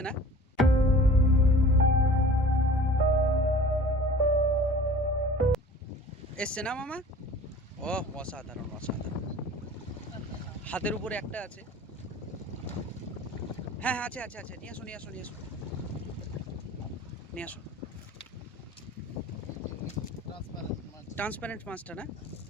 না? এসছে না মামা? ও অসাধারণ অসাধারণ। হাতের উপরে একটা আছে। হ্যাঁ হ্যাঁ আছে আছে আছে, নিয়ে আসো নিয়ে আসো নিয়ে আসো নিয়ে আসো। ট্রান্সপারেন্ট মাছটা না?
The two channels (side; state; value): both; normal; correlation 0.44